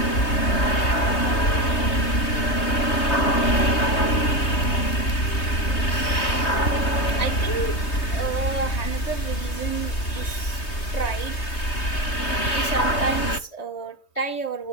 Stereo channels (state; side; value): late; right; 3.2 ms